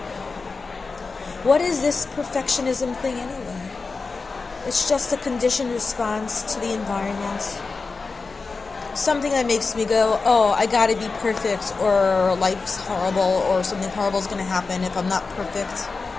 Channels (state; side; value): quieter; right; 4.2 dB